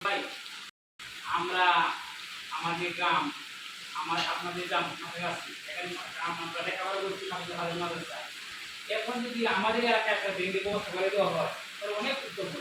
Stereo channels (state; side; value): identical; both; correlation 1.00